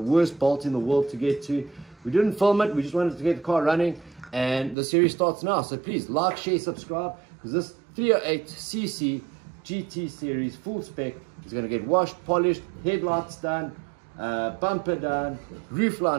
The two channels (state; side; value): drops out; left; at 4.8 s